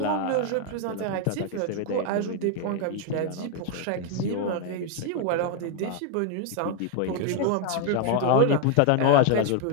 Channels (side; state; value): both; different; correlation 0.00